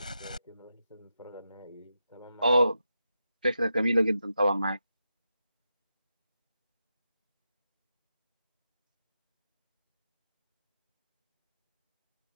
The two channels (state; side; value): inverted; both; correlation -0.87